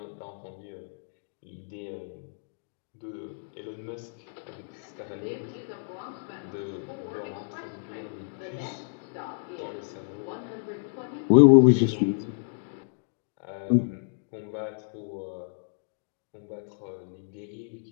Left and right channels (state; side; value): silent; right; digital silence